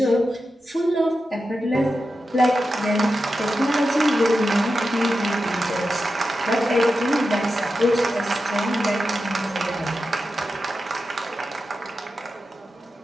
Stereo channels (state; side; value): normal; both; correlation 0.90